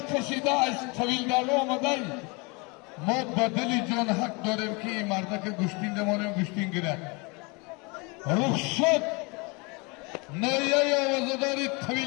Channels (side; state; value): right; quieter; 29.0 dB